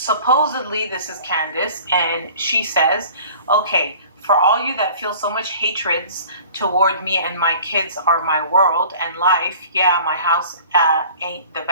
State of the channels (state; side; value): inverted; both; correlation -0.46